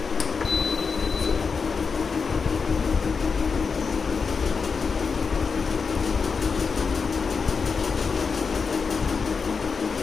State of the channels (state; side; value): quieter; right; 5.2 dB